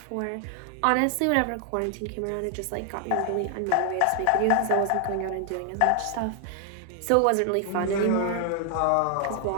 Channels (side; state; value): both; different; correlation 0.00